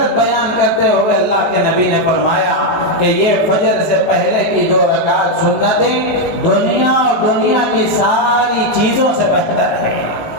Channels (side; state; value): right; late; 19 ms